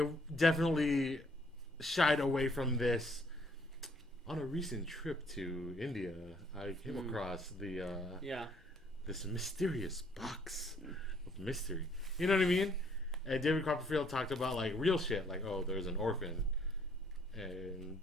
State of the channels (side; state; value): both; normal; correlation 0.65